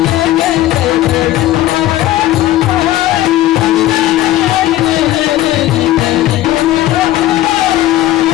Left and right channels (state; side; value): quieter; right; 14.8 dB